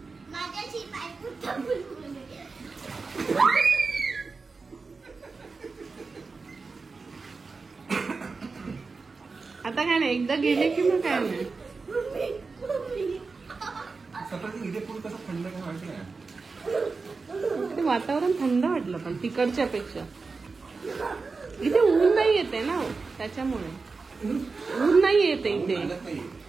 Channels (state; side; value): quieter; left; 4.3 dB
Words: आता काय नाही, एकदा गेले की मग काय नाही. इथे पूल कसं थंड काय माहिती नाही. ते वातावरण थंड वाटलं, पण तिकडच्या पेक्षा इथे ऊन नाही येते ना, त्याच्यामुळे ऊन नाही येते इथे,